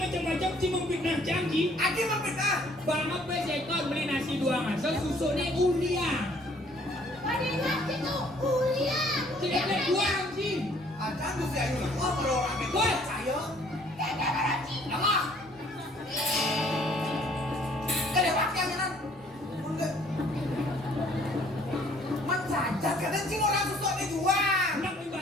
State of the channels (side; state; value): both; normal; correlation 0.60